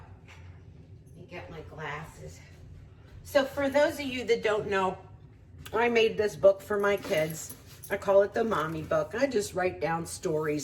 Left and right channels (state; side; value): identical; both; correlation 1.00